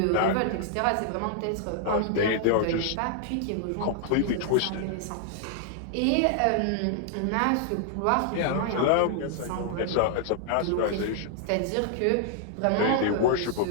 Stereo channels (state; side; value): different; both; correlation 0.00